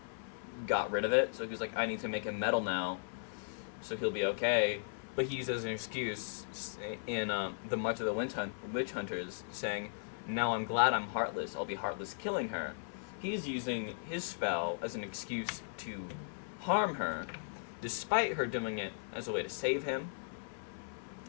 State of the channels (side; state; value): right; silent; 53 dB below the other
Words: got rid of it. So he was like, I need to make him metal now, so he'll be okay. But he uses an excuse in the March of the Witch Hunters, saying, now I'm glad I'm heartless. I'll be heartless killing her. He's using his spell as an excuse to harm her, despite her doing it as a way to save him.